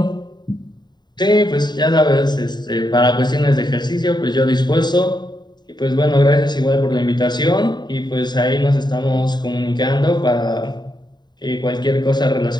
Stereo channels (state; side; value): late; right; 0.21 ms